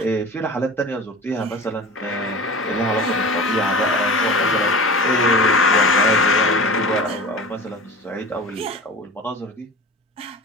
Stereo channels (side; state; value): both; normal; correlation 0.34